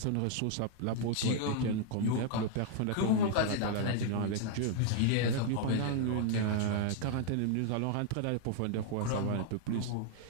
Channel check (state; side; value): different; both; correlation -0.01